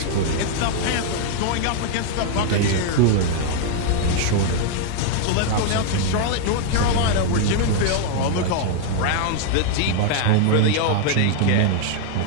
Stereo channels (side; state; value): both; different; correlation 0.00